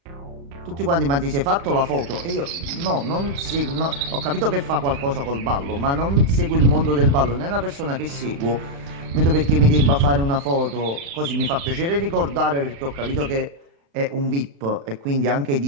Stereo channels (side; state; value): left; late; 36 ms